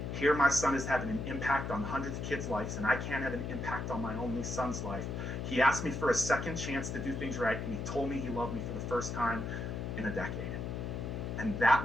Here my son is having an impact on hundreds of kids' lives, and I can't have an impact on my only son's life. He asked me for a second chance to do things right, and he told me he loved me for the first time in a decade. And that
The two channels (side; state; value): left; noise; hum, 4 dB below the sound